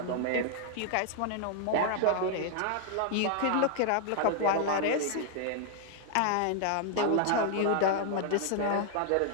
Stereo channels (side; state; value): both; different; correlation -0.01